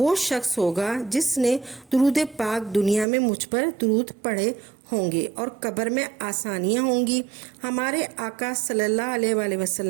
शख्स होगा जिसने दुरूद पाक दुनिया में मुझ पर दुरूद पढ़े होंगे और कब्र में आसानियाँ होंगी। हमारे आका सल्लल्लाहु अलैहि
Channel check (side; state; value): left; drops out; at 3.1 s